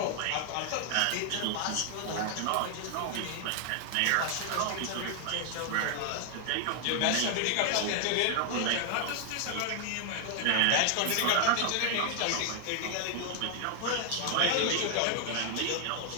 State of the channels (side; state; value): both; different; correlation 0.00